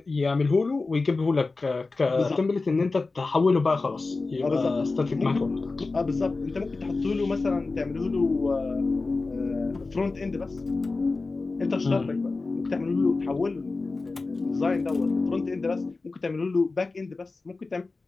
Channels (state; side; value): quieter; right; 3.7 dB